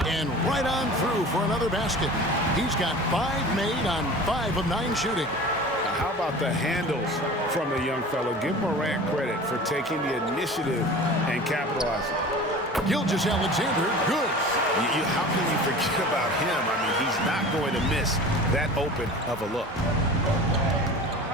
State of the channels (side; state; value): both; normal; correlation 0.38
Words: And right on through for another basket. He's got 5 made on 5 of 9 shooting. How about the handles from the young fellow? Give Morant credit for taking the initiative and capitalizing. Gilgeous-Alexander, good. How can you forget about him? I mean, he's not going to miss that open of a look.